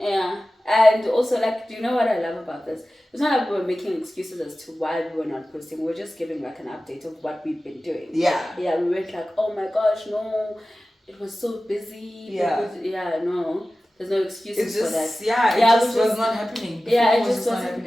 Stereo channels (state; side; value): normal; both; correlation 0.96